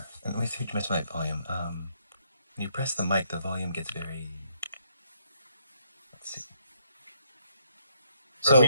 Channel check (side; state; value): both; inverted; correlation -0.72